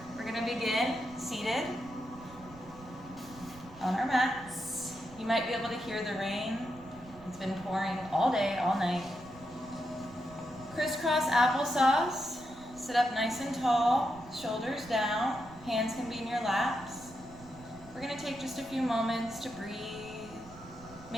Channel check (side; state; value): right; noise; rumble, 19 dB below the sound